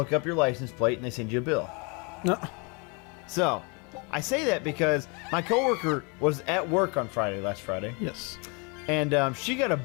up your license plate and they send you a bill. No. So I say that because my coworker was at work on last Friday. Yes. And she got a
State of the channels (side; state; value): right; quieter; 32.1 dB